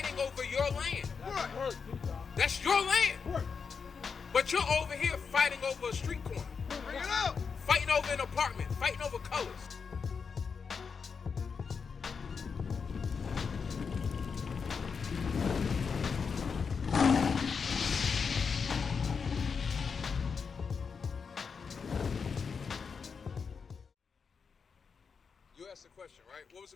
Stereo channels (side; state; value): right; quieter; 5.7 dB